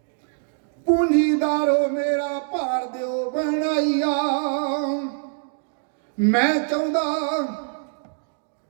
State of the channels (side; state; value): left; silent; digital silence